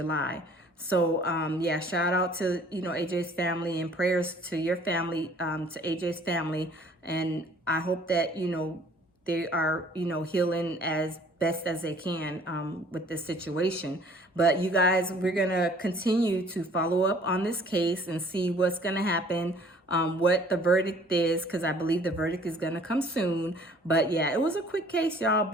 So, yeah, shout out to, you know, AJ's family, and prayers to your family, to AJ's family. And I hope that, you know, they are, you know, healing as best as they can with this situation. But you guys, we're going to continue to follow up on this case and see what's going to happen, what the verdict is, because I believe the verdict is going to come soon. But yeah, it was a quick case, y'all,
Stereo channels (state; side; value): normal; both; correlation 0.55